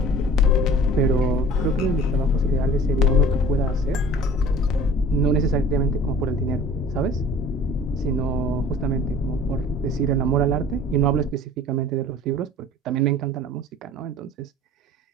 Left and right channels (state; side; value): normal; both; correlation 0.46